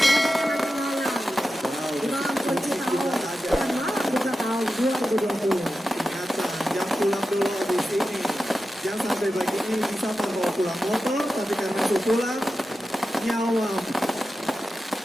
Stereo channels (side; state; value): both; normal; correlation 0.92